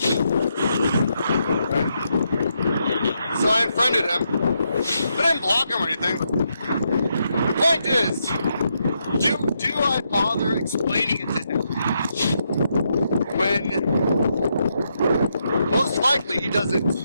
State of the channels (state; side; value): inverted; both; correlation -0.80